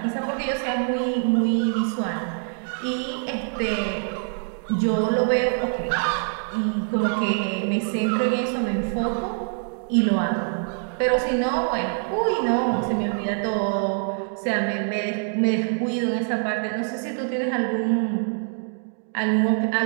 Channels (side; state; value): left; silent; 56 dB below the other